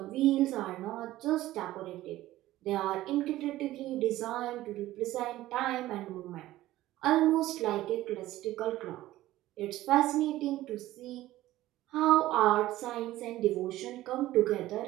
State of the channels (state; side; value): quieter; left; 15.6 dB